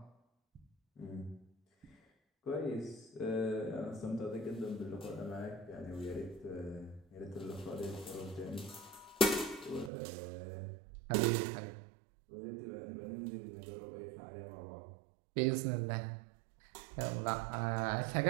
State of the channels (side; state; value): left; drops out; at 9.9 s